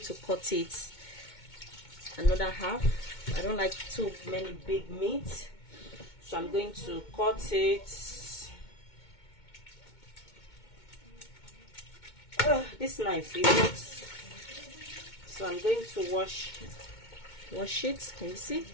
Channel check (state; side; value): late; right; 2.2 ms